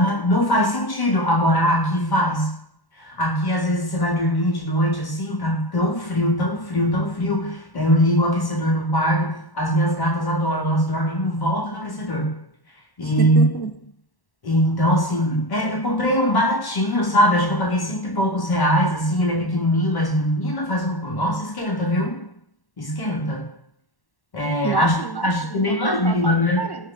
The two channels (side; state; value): right; late; 1.1 ms